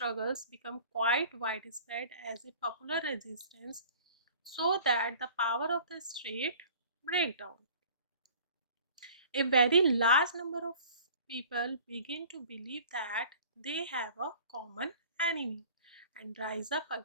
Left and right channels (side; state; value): both; inverted; correlation -0.47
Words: become quite widespread as a popular resistance so that the power of the state break down. A very large number of people begin to believe that they have a common enemy and rise up